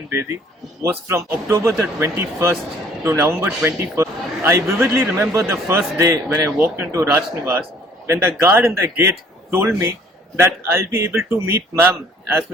Bedi was from October the 21st to November 21st. I vividly remember the first day when I walked into Raj Nivas when the guard in the gate told me that I'll be able to meet ma'am as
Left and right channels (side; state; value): both; normal; correlation 0.57